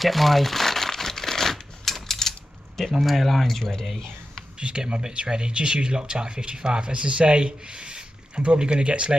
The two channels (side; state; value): both; normal; correlation 0.91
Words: my male irons ready. Just get my bits ready. Just use Loctite 55. As I say, I'm probably going to get